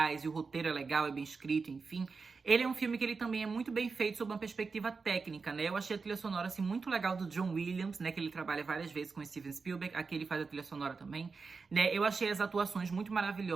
e o roteiro é legal, é bem escrito, enfim, ele é um filme que ele também é muito bem feito sob uma perspectiva técnica, né? Eu achei a trilha sonora, assim, muito legal do John Williams, né, que ele trabalha várias vezes com o Steven Spielberg, aqui ele faz a trilha sonora também, né? Eu achei as atuações muito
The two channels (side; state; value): left; quieter; 4.7 dB